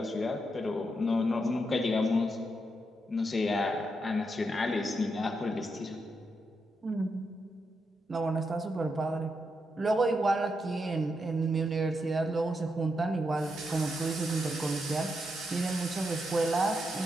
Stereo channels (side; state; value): both; normal; correlation 0.83